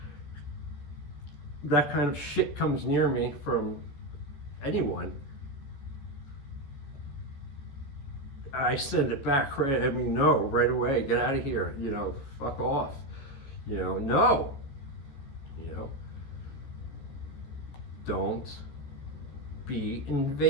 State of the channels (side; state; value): right; late; 15 ms